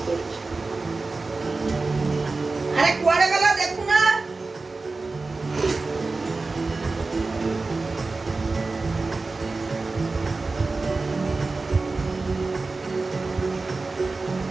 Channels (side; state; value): left; quieter; 3.7 dB